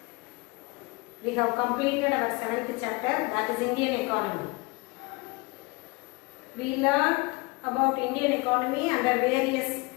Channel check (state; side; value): quieter; right; 26.5 dB